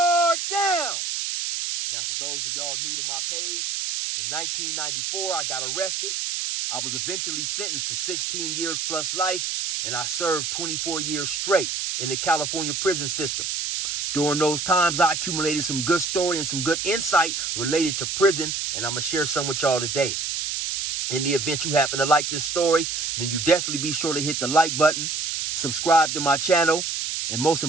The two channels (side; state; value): right; noise; hiss, 2 dB below the sound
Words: down! Now, for those of y'all new to my page, in 1994, I got arrested. I was eventually sentenced to 16 years plus life, and I served 24 years straight in the California prison system. During those times, I accumulated some good story and some good insight related to prison, and I'm going to share some with y'all today. In the event you happen to like this story, then you definitely be sure to hit the like button, subscribe to my channel, and most